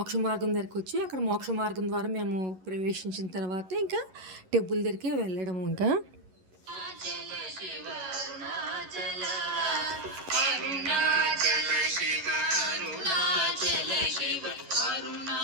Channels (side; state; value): left; late; 11 ms